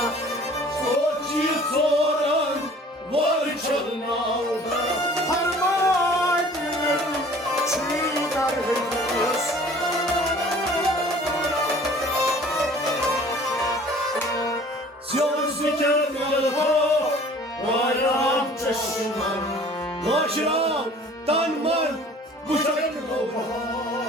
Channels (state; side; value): normal; both; correlation 0.50